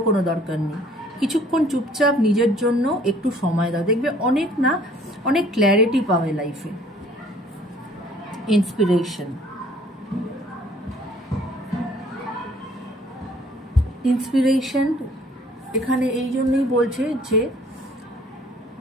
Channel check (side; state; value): both; normal; correlation 0.56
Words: কোনো দরকার নেই। কিছুক্ষণ চুপচাপ নিজের জন্য একটু সময় দাও, দেখবে অনেক না অনেক ক্ল্যারিটি পাবে লাইফে। ইন্সপিরেশন, ইন্সপিরেশন এখানে এই জন্যই বলছে যে